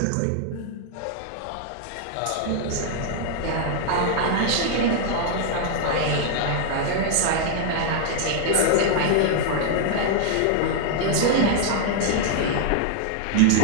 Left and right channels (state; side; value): different; both; correlation 0.00